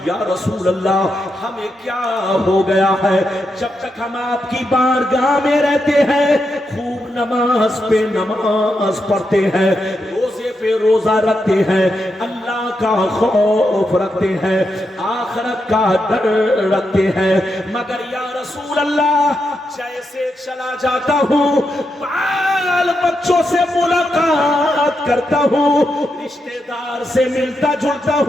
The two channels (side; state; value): both; normal; correlation 0.84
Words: या रसूल अल्लाह हमें क्या हो गया है, जब तक हम आपकी बारगाह में रहते हैं खूब नमाज पे नमाज पढ़ते हैं, रोजे पे रोजा रखते हैं, अल्लाह का खौफ रखते हैं, आखिरत का डर रखते हैं, मगर या रसूल अल्लाह जैसे चला जाता हूँ बाल बच्चों से मुलाकात करता हूँ, रिश्तेदार से मिलता जुलता